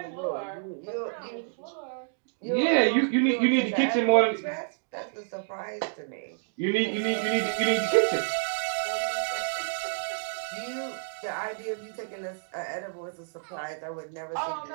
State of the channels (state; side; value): silent; left; digital silence